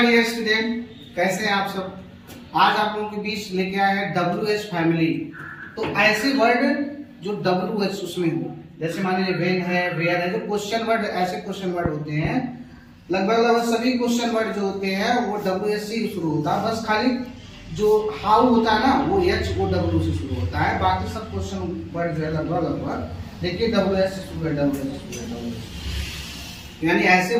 dear student, कैसे हैं आप सब। आज आप लोगों के बीच लेके आए हैं WH फैमिली। तो ऐसे वर्ड जो WH उसमें हो, जैसे मान लीजिए वेन है, वेयर है, जो क्वेश्चन वर्ड, ऐसे क्वेश्चन वर्ड होते हैं। लगभग सभी क्वेश्चन वर्ड जो होते हैं वो WH से शुरू होता है। बस खाली जो हाउ होता है ना, वो HOW से शुरू होता है। बाकी सब क्वेश्चन वर्ड जो है लगभग देखिए WH से शुरू है, WH यानी ऐसे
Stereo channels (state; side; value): identical; both; correlation 1.00